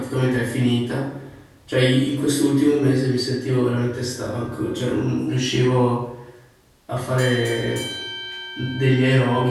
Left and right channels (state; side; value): identical; both; correlation 1.00